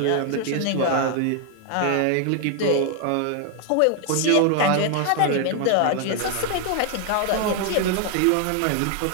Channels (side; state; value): both; different; correlation 0.00